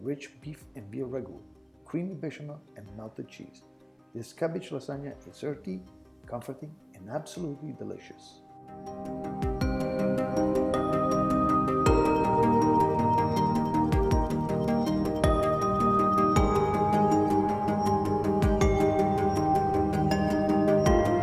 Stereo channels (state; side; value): identical; both; correlation 1.00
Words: beef and veal ragu, creamy bechamel and melted cheese. This cabbage lasagna is earthy, comforting and absolutely delicious.